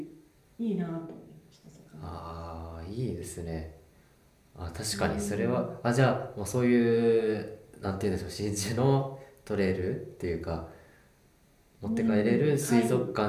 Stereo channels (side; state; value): both; identical; correlation 1.00